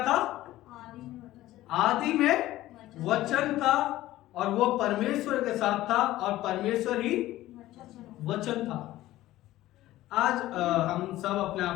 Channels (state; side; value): quieter; right; 15.6 dB